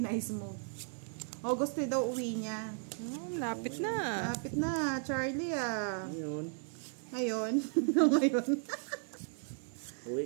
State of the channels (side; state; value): left; silent; 54 dB below the other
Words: move. August daw uwi niya. Lapit na. Lapit na, Charlie ah. Ngayon. Ngayon. Ngayon. Uwi